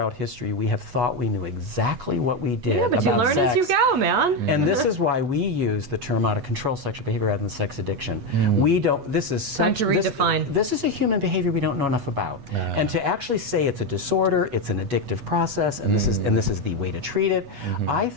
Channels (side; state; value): left; late; 8.2 ms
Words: history we have thought we knew exactly what we did Yeah, but about you learn sex. as you go, man. And this is why we use the term out of control sexual behavior rather than sex addiction. We don't, this is such, to redefine. This is a human behavior we don't know enough about. And to actually say it's a disorder, it's an addictive process, and this is the way to treat it, I